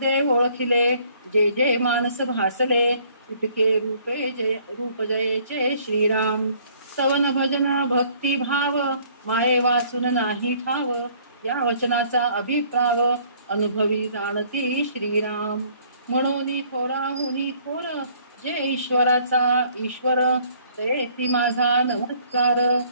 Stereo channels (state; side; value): inverted; both; correlation -0.60